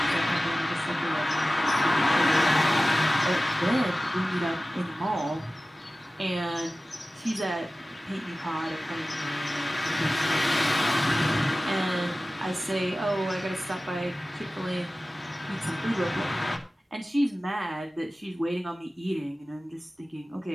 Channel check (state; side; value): normal; both; correlation 0.97